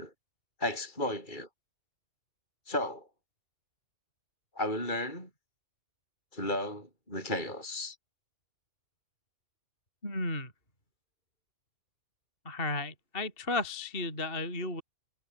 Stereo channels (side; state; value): right; late; 2.3 ms